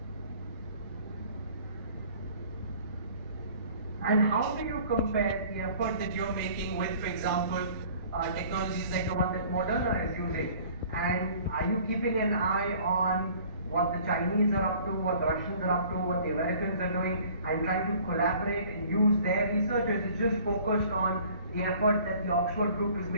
And how do you compare the effort that you're making with, for example, technologies like the one that Moderna is using? And are you keeping an eye on what the Chinese are up to, what the Russians are up to, what the Americans are doing, and trying to collaborate and use their research? Or is it just focused on the effort that the Oxford group is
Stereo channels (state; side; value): inverted; both; correlation -0.51